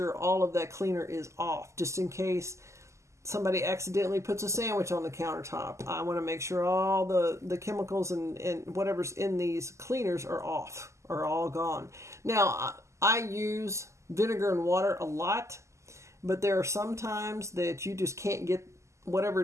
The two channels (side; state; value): left; late; 0.14 ms